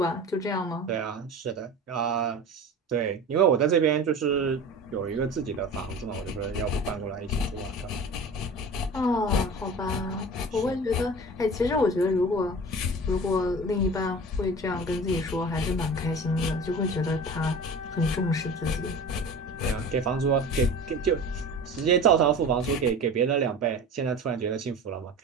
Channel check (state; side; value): normal; both; correlation 0.36